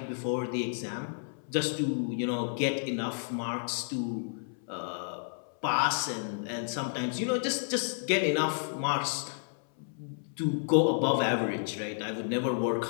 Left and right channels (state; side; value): silent; right; 57 dB below the other